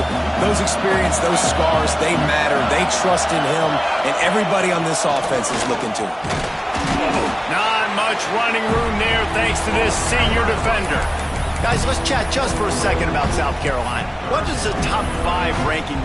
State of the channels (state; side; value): identical; both; correlation 1.00